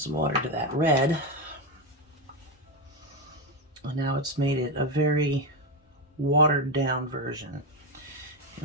water to that red. And now it's made it a very watered down version.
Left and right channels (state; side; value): normal; both; correlation 0.11